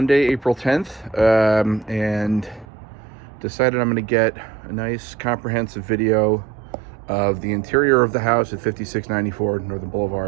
April 10th, and decided I'm going to get a nice comprehensive video of the interior of the house at 5694 Northern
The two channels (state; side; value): drops out; left; at 2.7 s